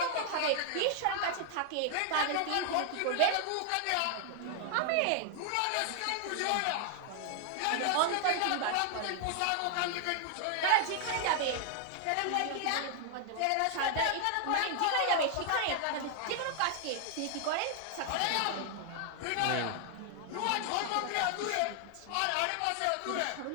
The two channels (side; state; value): both; different; correlation 0.00